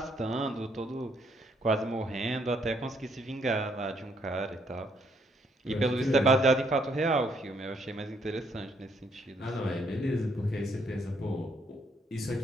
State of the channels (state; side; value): normal; both; correlation 0.70